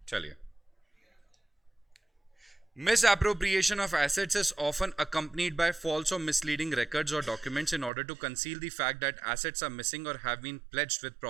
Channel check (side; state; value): left; drops out; at 7.9 s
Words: चलिए। Misappropriation of assets is often accompanied by false or misleading records or documents in order to conceal the fact that assets are missing or have been pledged with